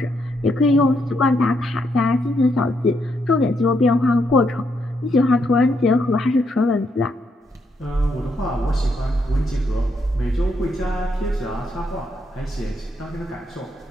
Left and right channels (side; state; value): both; normal; correlation 0.77